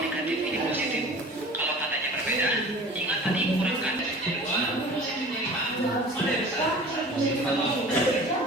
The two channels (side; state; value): both; normal; correlation 0.42